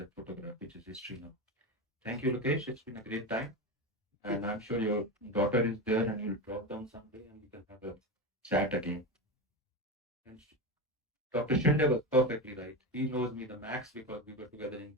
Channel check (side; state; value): both; normal; correlation 0.19